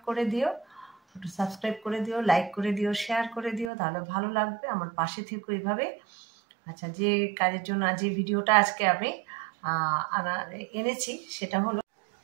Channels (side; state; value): left; drops out; at 3.7 s